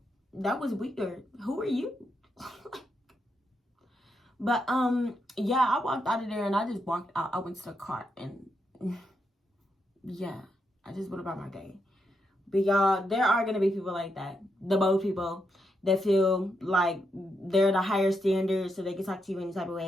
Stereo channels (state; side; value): normal; both; correlation 0.82